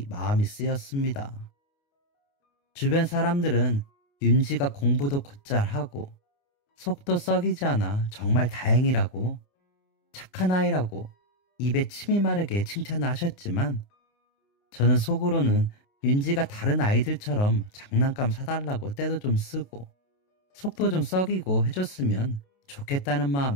마음이 쓰였습니다. 주변 사람들은 윤지가 공부도 곧잘 하고 속도 썩이지 않아 정말 다행이라고 착한 아이라고 입에 침이 마르게 칭찬을 하셨지만 저는 속으로는 윤지가 다른 아이들처럼 장난감 사달라고 때도 좀 쓰고 속도 좀 썩이고 해줬으면 좋겠다는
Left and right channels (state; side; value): late; right; 29 ms